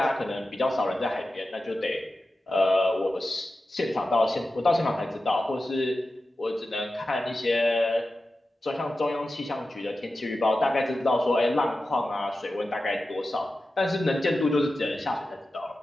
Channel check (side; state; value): both; normal; correlation 0.93